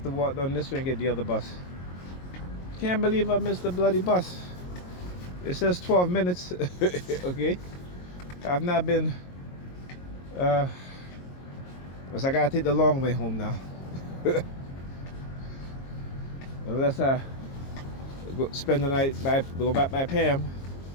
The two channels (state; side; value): late; right; 22 ms